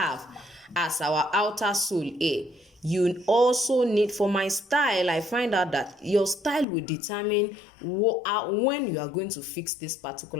as our outer sole here, you also need, for my style, I find out that your style will determine when you are going to fix this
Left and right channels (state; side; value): drops out; right; at 6.7 s